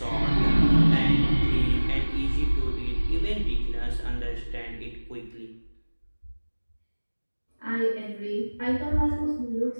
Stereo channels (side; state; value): both; inverted; correlation -1.00